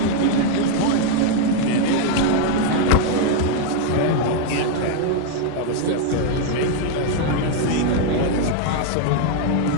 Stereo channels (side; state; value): both; different; correlation 0.00